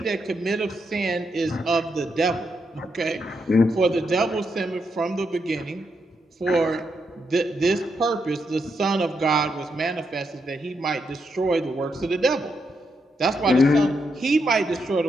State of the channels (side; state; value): both; normal; correlation 0.81